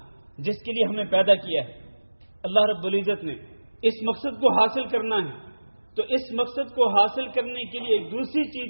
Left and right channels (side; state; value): both; inverted; correlation -1.00